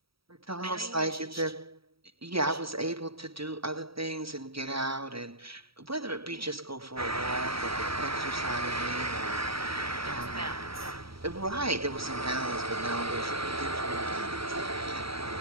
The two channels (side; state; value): left; late; 0.75 ms